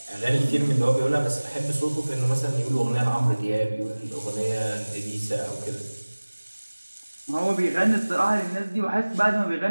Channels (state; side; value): inverted; both; correlation -1.00